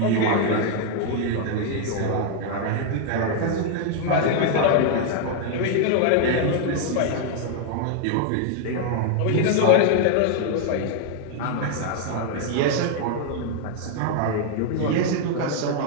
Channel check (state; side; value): different; both; correlation 0.00